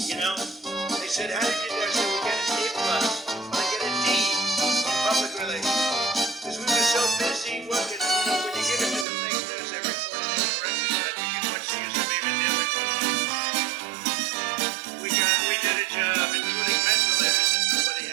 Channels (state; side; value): drops out; left; at 9.1 s